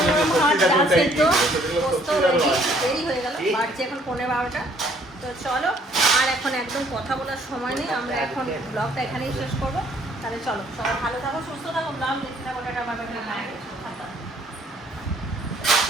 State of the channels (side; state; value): both; normal; correlation 0.62